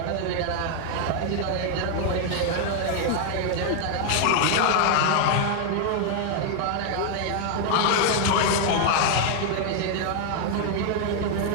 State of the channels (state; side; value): different; both; correlation 0.00